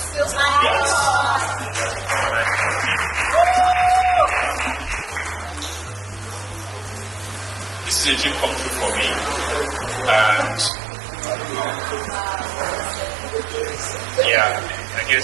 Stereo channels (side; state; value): left; drops out; at 10.7 s